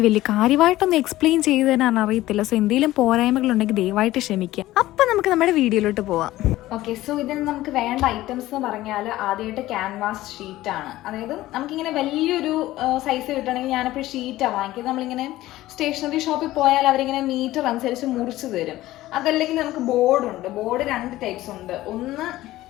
വലിയ കാര്യമായിട്ടൊന്നും എക്സ്പ്ലെയിൻ ചെയ്ത് തരാൻ അറിയത്തില്ല. സോ എന്തെങ്കിലും പോരായ്മകളുണ്ടെങ്കിൽ ദയവായിട്ട് ക്ഷമിക്കുക. അപ്പം നമുക്ക് നമ്മുടെ വീഡിയോയിലോട്ട് പോവാം. ഓക്കെ, സോ ഇതിന് നമുക്ക് വേണ്ട ഐറ്റംസ് എന്ന് പറഞ്ഞാൽ ആദ്യമായിട്ട് ക്യാൻവാസ് ഷീറ്റാണ്. അതായത് നമുക്കിങ്ങനെ വലിയൊരു സൈസ് കിട്ടണമെങ്കിൽ ഞാനിപ്പോൾ ഷീറ്റാണ് വാങ്ങിക്കുന്നത്. നമ്മളിങ്ങനെ സ്റ്റേഷനറി ഷോപ്പിൽ പോയാൽ അവരിങ്ങനെ മീറ്റർ അനുസരിച്ച് മുറിച്ച് തരും. അതല്ലെങ്കിൽ നമുക്ക് ബോർഡുണ്ട്. ബോർഡ് 2 ടൈപ്സ് ഉണ്ട്. ഒന്ന്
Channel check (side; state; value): right; quieter; 16.1 dB